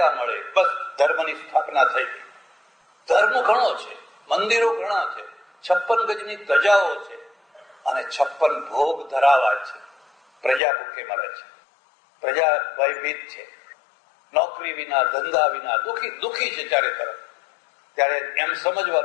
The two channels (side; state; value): right; drops out; at 10.6 s